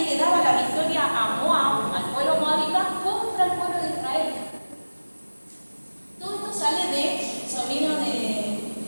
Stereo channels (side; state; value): both; inverted; correlation -1.00